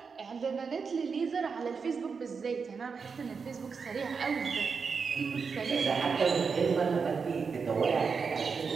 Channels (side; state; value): left; quieter; 5.4 dB